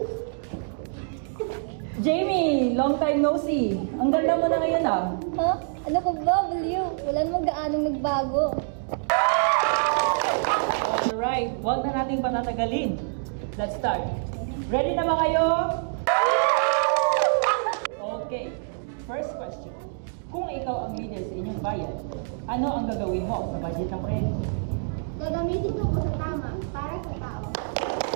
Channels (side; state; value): left; silent; digital silence